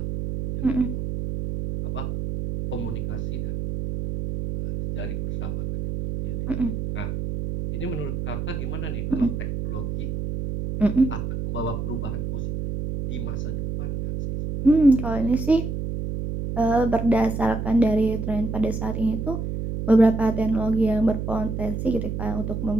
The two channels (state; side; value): noise; right; hum, 3 dB below the sound